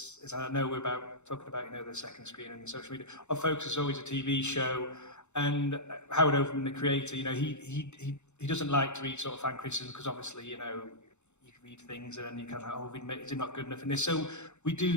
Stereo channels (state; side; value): late; right; 0.83 ms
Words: is, I know we're talking about, the second screen and the social media, our focus is always a TV show, and Howard Overman, the creator, he doesn't like to read sort of fan criticism, because obviously, you can read things and you kind of, is it not good enough in this? So we